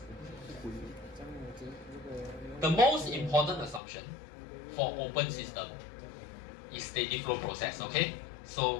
the most important assumption for open system is steady flow process, okay?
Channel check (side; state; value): right; drops out; at 3.8 s